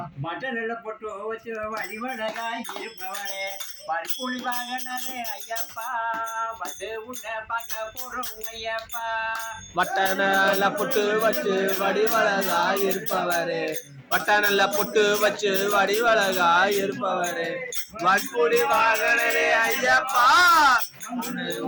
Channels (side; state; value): both; identical; correlation 1.00